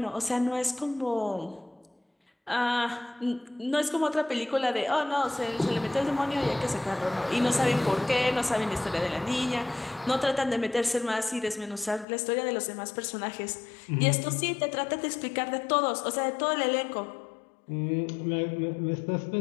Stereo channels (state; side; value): drops out; right; at 12.1 s